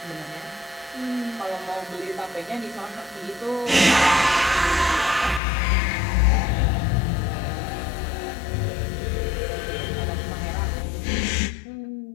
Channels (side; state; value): right; drops out; at 5.4 s